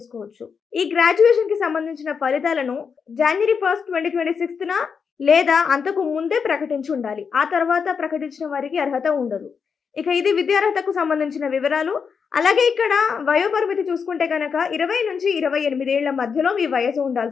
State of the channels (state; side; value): quieter; right; 6.1 dB